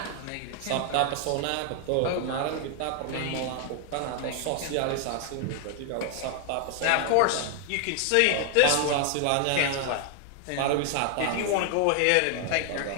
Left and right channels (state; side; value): different; both; correlation 0.00